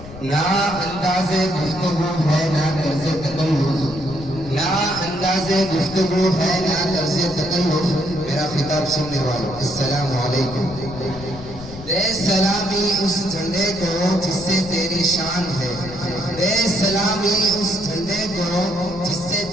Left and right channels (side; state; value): left; noise; rumble, 14 dB below the sound